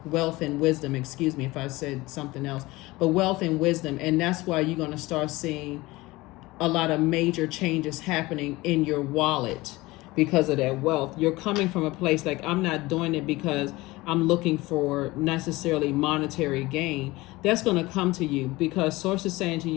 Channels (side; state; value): right; quieter; 20.5 dB